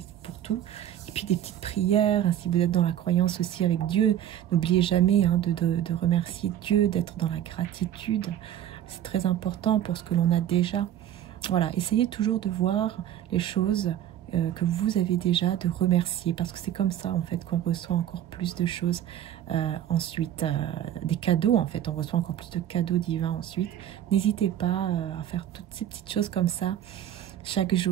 pour tout. Et puis des petites prières, hein, si vous êtes dans la croyance aussi avec Dieu, n'oubliez jamais hein, de remercier Dieu, d'être dans la gratitude, c'est très important pour ce que l'on a déjà. Voilà, essayez toujours de voir les choses que vous avez déjà, de remercier, parce que c'est comme ça en fait qu'on reçoit encore plus de choses. Ensuite, des cadeaux, en fait, on reçoit encore plus de cadeaux divins ensuite. N'hésitez pas à faire toutes ces petites choses comme ça chaque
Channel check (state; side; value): quieter; left; 11.1 dB